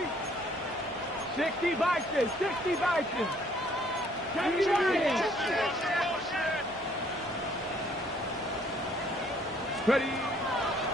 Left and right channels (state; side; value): normal; both; correlation 0.62